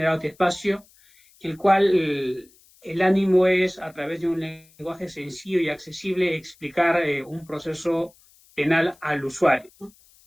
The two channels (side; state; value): left; noise; hiss, 29 dB below the sound